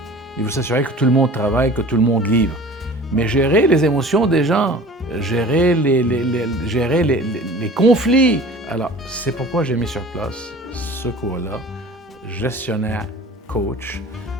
Il veut s'assurer que tout le monde travaille, que tout le monde livre. Mais gérer les émotions des gens, gérer les conflits. Alors, c'est pourquoi j'ai mis sur place ce cours-là, gestionnaire coach,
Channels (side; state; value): both; normal; correlation 0.43